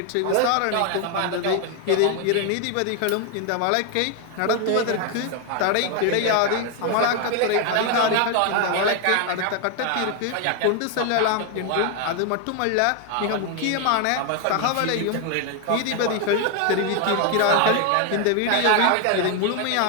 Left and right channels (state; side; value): different; both; correlation 0.01